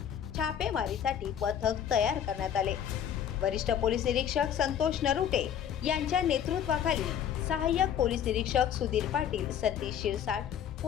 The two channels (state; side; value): quieter; right; 9.1 dB